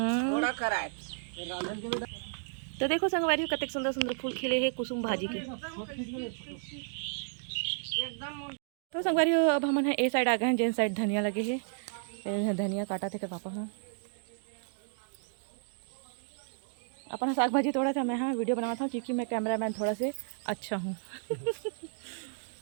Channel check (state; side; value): silent; left; digital silence